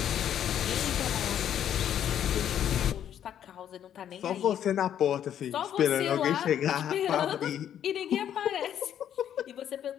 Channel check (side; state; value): right; quieter; 10.0 dB